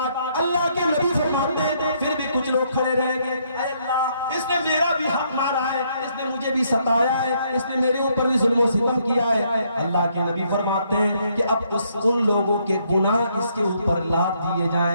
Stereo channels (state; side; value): inverted; both; correlation -0.71